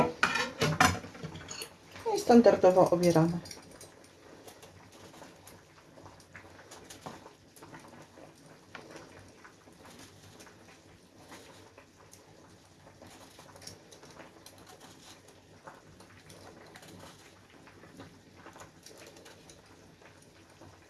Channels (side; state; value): both; identical; correlation 1.00